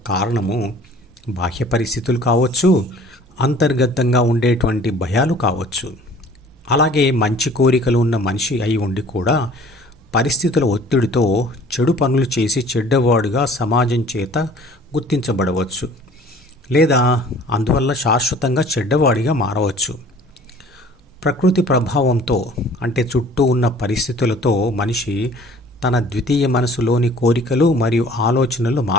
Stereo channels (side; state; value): both; normal; correlation 0.50